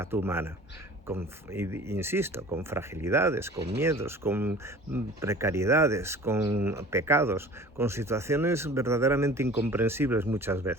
humana. Insisto, con fragilidades, con miedos, con precariedades, con pecados, con situaciones verdaderamente incomprensibles muchas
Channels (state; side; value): normal; both; correlation 0.43